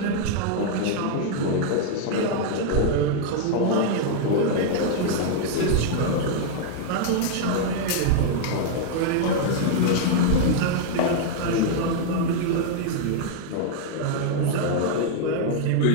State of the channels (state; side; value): different; both; correlation 0.00